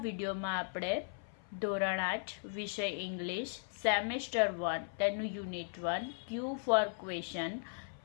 વિડીયોમાં આપણે ધોરણ 8 વિષય ઇંગ્લિશ સેમેસ્ટર 1 તેનું યુનિટ 1 ક્યુ ફોર ક્વેશ્ચન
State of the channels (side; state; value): right; silent; 53 dB below the other